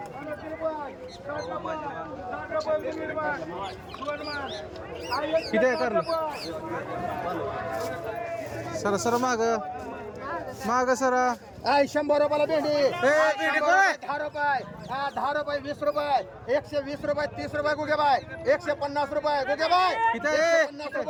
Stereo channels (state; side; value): identical; both; correlation 1.00